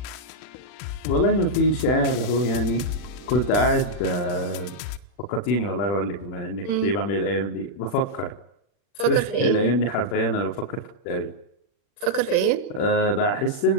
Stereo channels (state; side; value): late; right; 40 ms